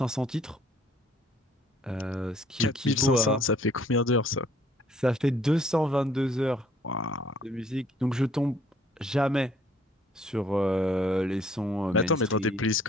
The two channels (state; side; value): normal; both; correlation 0.61